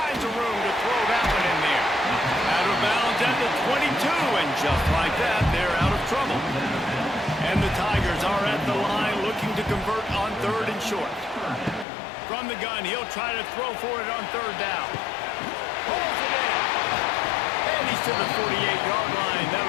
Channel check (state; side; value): drops out; right; at 11.9 s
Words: of room to throw that one in there. Out of bounds at the 22, and just like that, they're out of trouble. And the Tigers are at the line looking to convert on third and short. From the gun, he'll try to throw for it on third down. Pulls it in. And he's to the 48-yard line.